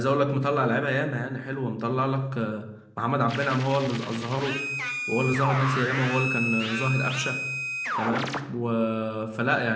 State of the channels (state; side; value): identical; both; correlation 1.00